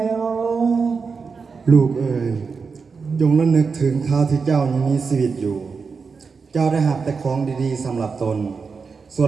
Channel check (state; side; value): quieter; left; 5.1 dB